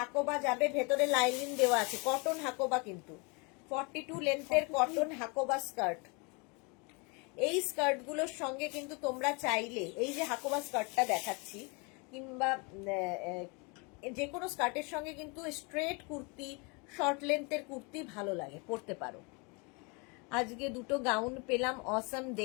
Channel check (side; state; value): right; quieter; 31.1 dB